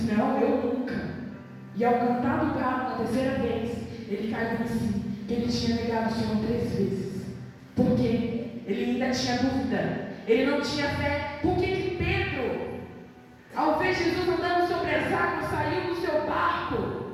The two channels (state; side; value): identical; both; correlation 1.00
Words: não, eu nunca. E ao cantar do galo na 3ª vez, ele caiu em si, que ele tinha negado o Senhor 3 vezes. Por quê? Ele ainda tinha dúvida, ele não tinha fé. Por que Pedro, ao ver Jesus andando sobre as águas, saiu do seu barco